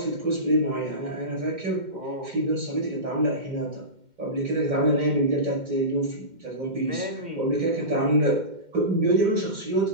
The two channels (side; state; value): left; late; 2.1 ms